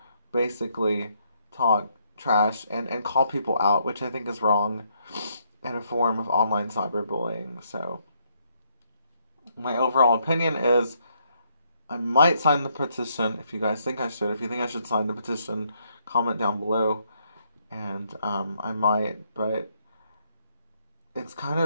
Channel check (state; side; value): inverted; both; correlation -0.74